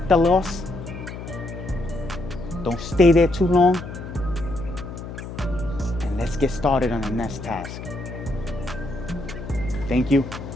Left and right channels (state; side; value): noise; left; hum, 10 dB below the sound